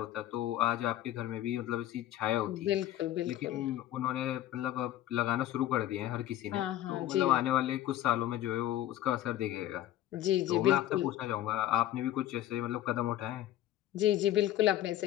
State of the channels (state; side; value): quieter; right; 13.3 dB